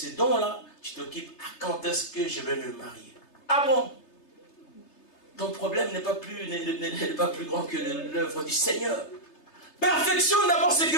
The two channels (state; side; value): late; right; 3.3 ms